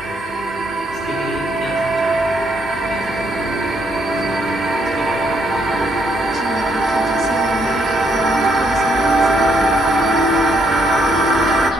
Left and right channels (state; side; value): normal; both; correlation 0.73